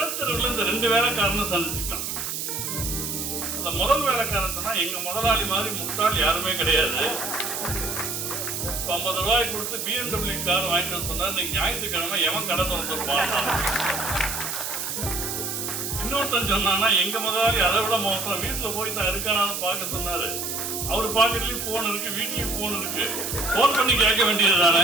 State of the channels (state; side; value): noise; right; hiss, 4 dB below the sound